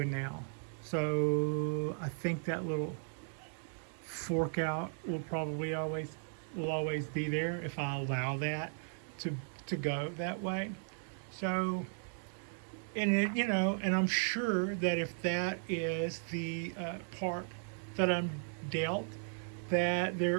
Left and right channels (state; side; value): silent; left; 54 dB below the other